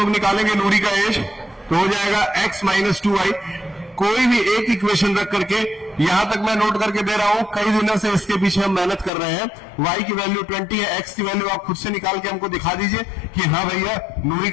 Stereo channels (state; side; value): drops out; right; at 9.1 s